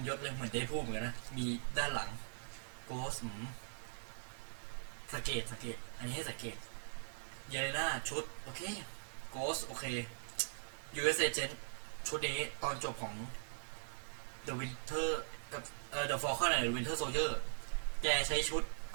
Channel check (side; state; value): left; silent; digital silence